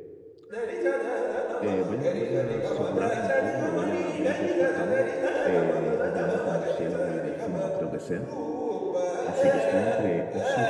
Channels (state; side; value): identical; both; correlation 1.00